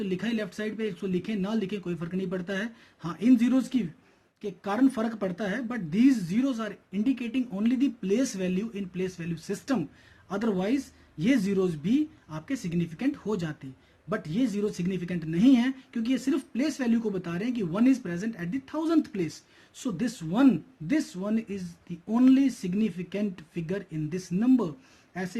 लिखा है लेफ्ट साइड पे, इसको लिखे ना लिखे कोई फर्क नहीं पड़ता है। हाँ, इन जीरोस के कारण फर्क पड़ता है, but these zeros are indicating only the place value in place value system. Otherwise ये जीरोज भी आपके सिग्निफिकेंट हो जाते, बट ये जीरो सिग्निफिकेंट नहीं है क्योंकि ये सिर्फ प्लेस वैल्यू को बता रहे हैं कि 1 is present at the 1000th place. So this one is the only significant figure in this number.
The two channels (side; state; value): both; identical; correlation 1.00